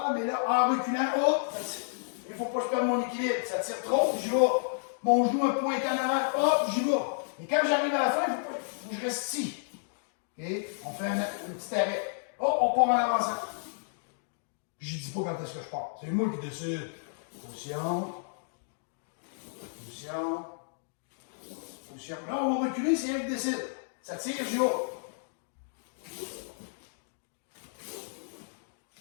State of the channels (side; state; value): right; silent; digital silence